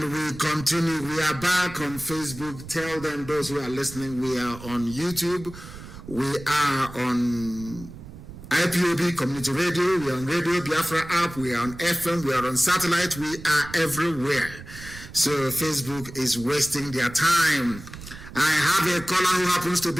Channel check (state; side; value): noise; right; rumble, 15 dB below the sound